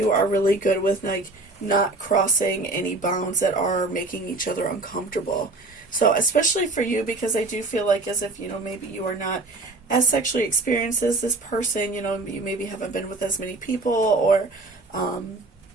are really good with, like, not crossing any bounds that are making each other uncomfortable. So, especially for you, because I do feel like as if, you know, maybe you are not as sexually experienced as this person, you know, you maybe haven't been with as many people, or,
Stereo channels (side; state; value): left; quieter; 3.2 dB